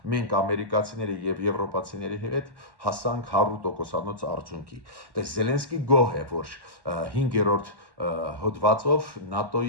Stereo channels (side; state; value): left; late; 1.1 ms